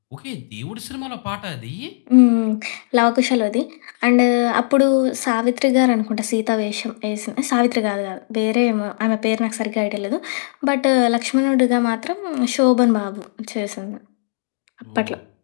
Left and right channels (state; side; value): silent; right; digital silence